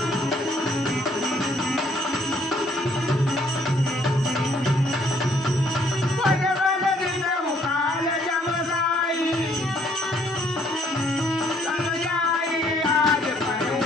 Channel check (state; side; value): normal; both; correlation 0.65